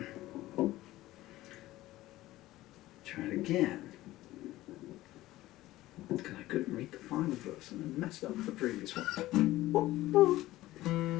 Try it again. Because I couldn't read the final verse and I messed up the previous one.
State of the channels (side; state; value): right; quieter; 16.5 dB